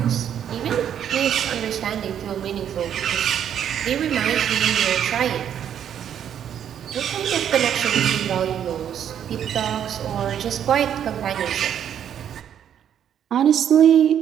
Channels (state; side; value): quieter; left; 9.4 dB